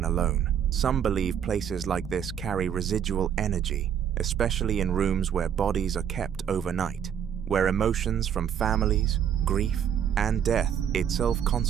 alone. Some believe places like this carry residual energy, especially in rooms where bodies are kept overnight, where emotions from families, grief, and death itself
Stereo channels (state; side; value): quieter; left; 8.8 dB